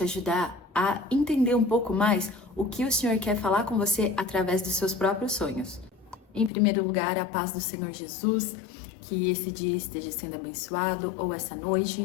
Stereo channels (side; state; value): right; drops out; at 6.5 s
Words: ajudar a entender um pouco mais o que o Senhor quer falar com você através dos seus próprios sonhos. Em primeiro lugar, a paz do Senhor Jesus, que esse dia esteja sendo abençoado, ou essa